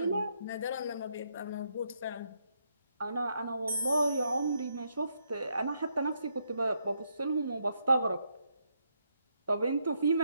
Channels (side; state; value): both; inverted; correlation -0.77